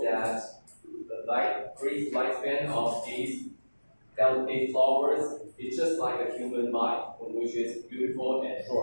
that the brief lifespan of these delicate flowers is just like a human life, which is beautiful and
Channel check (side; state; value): both; inverted; correlation -1.00